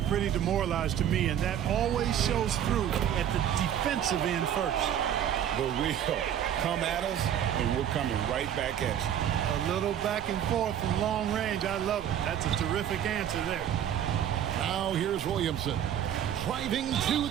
pretty demoralized to me, and that always shows through at the defensive end first. But we'll come at us, and we're coming right back at you. A little back and forth from long range. I love it. That's a terrific answer there. Now here's Williamson. Driving to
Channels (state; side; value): quieter; left; 10.0 dB